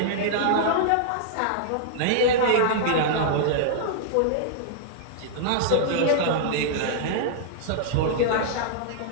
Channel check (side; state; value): both; different; correlation -0.02